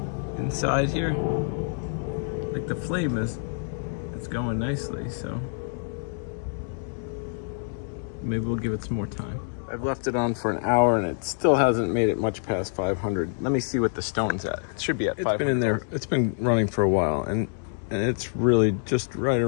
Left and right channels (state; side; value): silent; right; digital silence